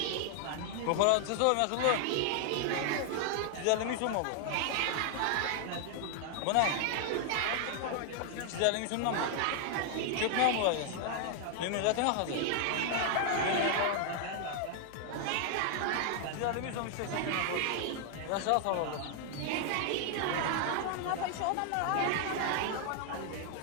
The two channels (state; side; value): different; both; correlation 0.00